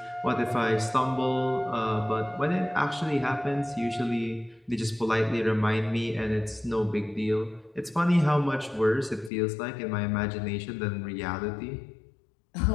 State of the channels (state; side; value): drops out; right; at 9.3 s